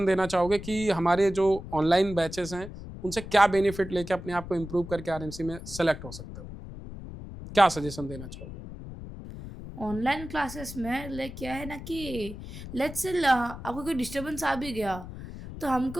देना चाहोगे कि हमारे जो ऑनलाइन बैचेस हैं उनसे क्या बेनिफिट लेके अपने आप को इम्प्रूव करके RMC में सेलेक्ट हो सकते हो? क्या सजेशन देना चाहोगे? ऑनलाइन क्लासेस में लाइक क्या है ना कि लेट्स से आपको कोई डिस्टर्बेंस आ भी गया तो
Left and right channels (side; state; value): left; noise; rumble, 11 dB below the sound